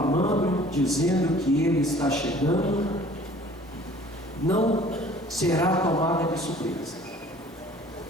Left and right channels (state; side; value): normal; both; correlation 0.51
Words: dizendo que ele está chegando. Não será tomada de surpresa.